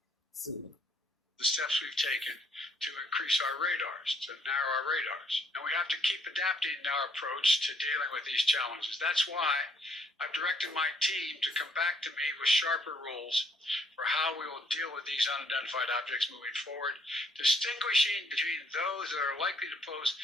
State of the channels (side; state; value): both; normal; correlation 0.68